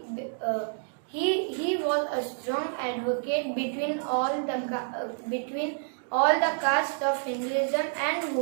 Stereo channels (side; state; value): left; silent; digital silence